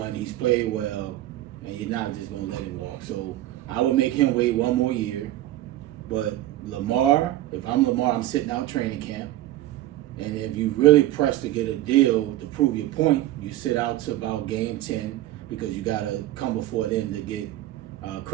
He's played well, and you're not just going to let him walk. So I would make him wait one more year. But Lamar, if I'm Lamar, I'm sitting out training camp. And if you really press to get a deal to prove your point, you sit out to about game 10 because you got to come before then to get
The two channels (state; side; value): quieter; left; 14.7 dB